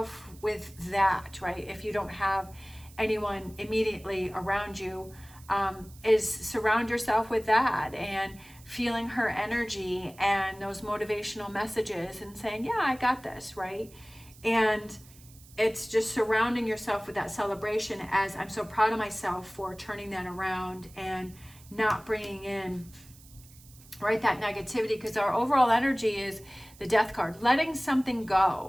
with that, right? If you don't have anyone immediately around you, is surround yourself with that and feeling her energy and those motivational messages and saying, yeah, I got this, right? And it's just surrounding yourself with that celebration, as I'm so proud of myself for turning that around and not bringing in, right, that negativity, because our overall energy is the Death card, letting something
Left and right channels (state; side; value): noise; right; hiss, 23 dB below the sound